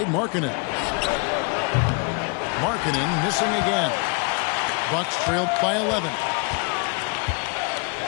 Markkanen. Markkanen missing again. Bucks trailed by 11.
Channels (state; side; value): quieter; right; 33.6 dB